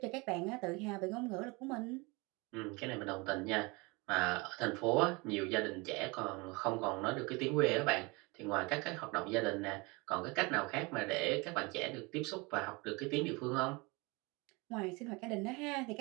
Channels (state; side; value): quieter; left; 26.7 dB